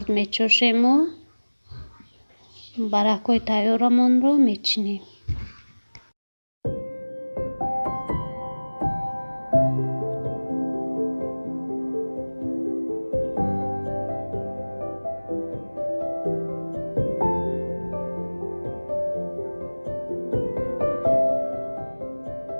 میچوشیم و برکای تیارمون رو میچینیم.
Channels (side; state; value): both; inverted; correlation -1.00